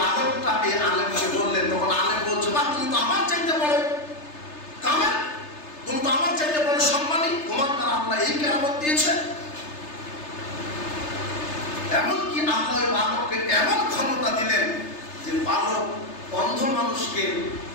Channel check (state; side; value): late; right; 3.3 ms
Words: এই আলেমকে বললেন। তখন আলেম বলছে বা তুমি তো আমার চাইতে বড় কামেল, তুমি তো আমার চাইতে বড় সম্মানী, তোমার দ্বারা আল্লাহ এই কেরামত দিয়েছে। এমনকি আল্লাহ ওই বালককে এমন ক্ষমতা দিলেন যে বালক অন্ধ মানুষকে